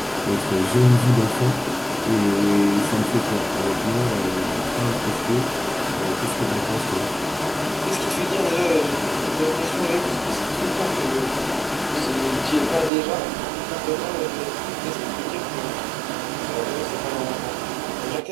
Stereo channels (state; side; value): drops out; left; at 12.9 s